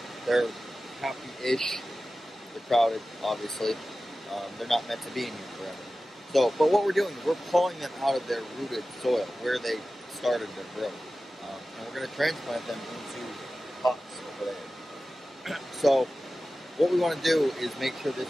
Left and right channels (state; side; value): normal; both; correlation 0.95